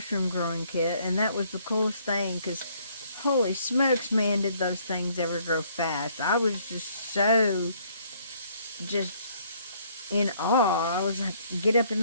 growing kit, and that was the coolest thing, because holy smokes, man, did those things ever grow fast. I was just in awe. I was like, get up in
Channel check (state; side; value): inverted; both; correlation -0.64